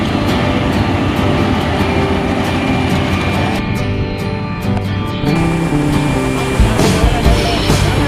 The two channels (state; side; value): identical; both; correlation 1.00